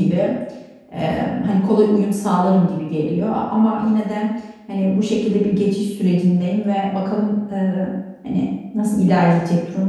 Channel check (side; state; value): both; identical; correlation 1.00